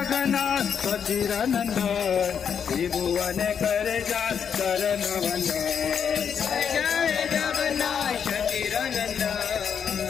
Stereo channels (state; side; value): quieter; right; 7.4 dB